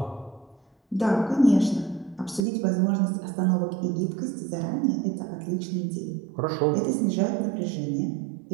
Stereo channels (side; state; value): left; drops out; at 2.5 s